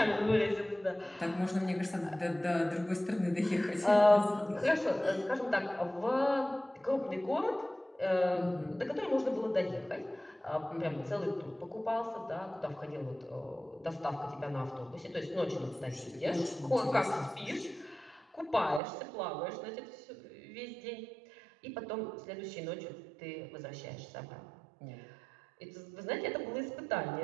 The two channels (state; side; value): drops out; left; at 18.8 s